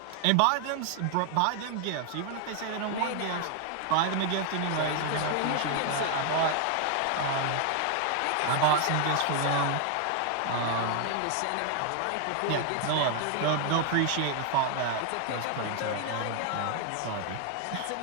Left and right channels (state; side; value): different; both; correlation 0.00